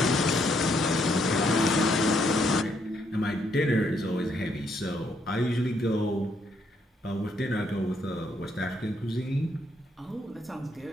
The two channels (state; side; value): normal; both; correlation 0.73